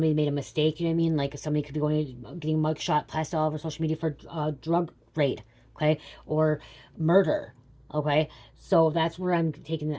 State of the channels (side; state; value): both; identical; correlation 1.00